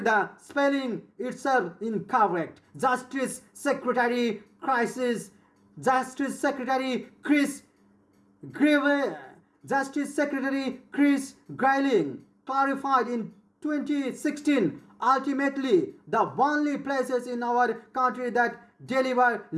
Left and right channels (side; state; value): both; identical; correlation 1.00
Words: the spelling itself incorrect. Justice Secretary Chris Grayling clarified in 2016, "Ultimately, the only places in our country that deliver